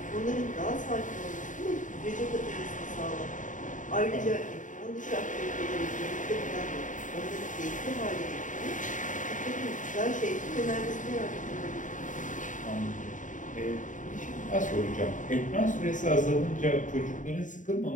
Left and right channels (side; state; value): right; late; 0.37 ms